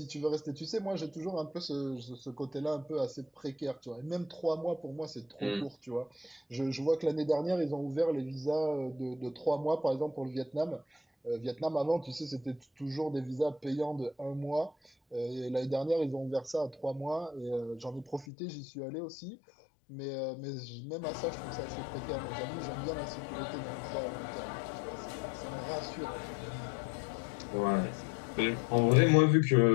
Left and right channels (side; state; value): right; drops out; at 18.2 s